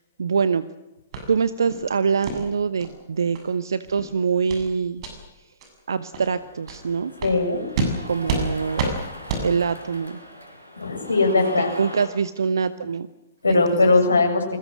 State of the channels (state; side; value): inverted; both; correlation -0.74